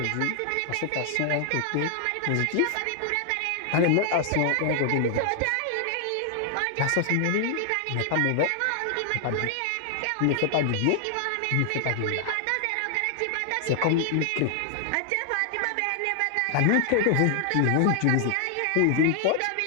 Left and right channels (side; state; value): both; different; correlation 0.00